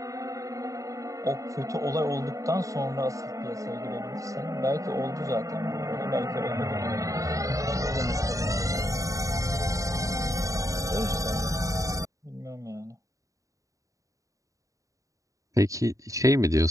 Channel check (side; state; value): left; late; 0.16 ms